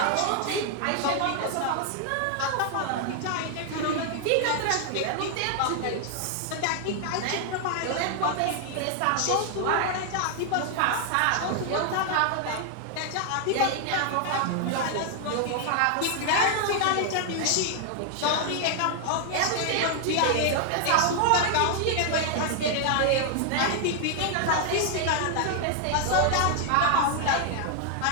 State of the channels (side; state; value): both; different; correlation 0.00